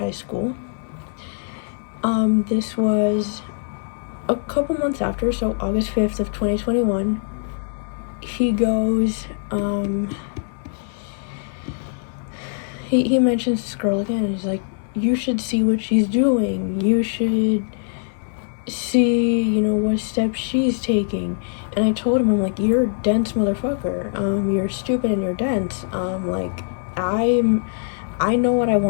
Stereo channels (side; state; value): right; silent; digital silence